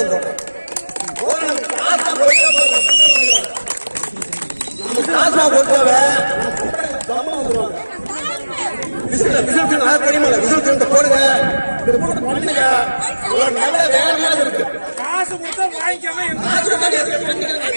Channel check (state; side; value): inverted; both; correlation -1.00